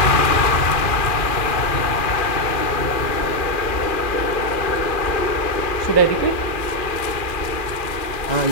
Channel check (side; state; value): right; late; 2.4 ms